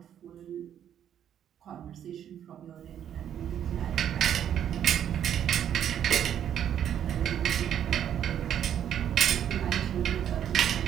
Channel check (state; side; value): quieter; left; 9.8 dB